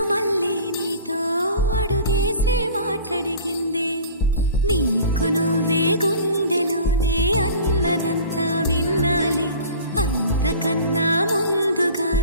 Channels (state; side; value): inverted; both; correlation -0.42